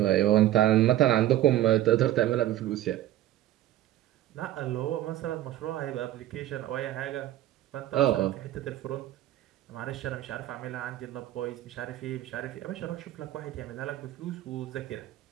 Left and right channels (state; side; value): quieter; left; 13.5 dB